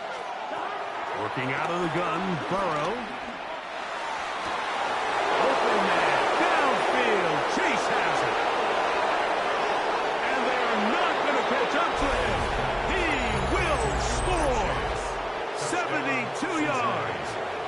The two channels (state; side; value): identical; both; correlation 1.00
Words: Working out of the gun, Burrow. Open man, downfield, Chase has it. And they're not going to catch up to him. He will score. 72 yards.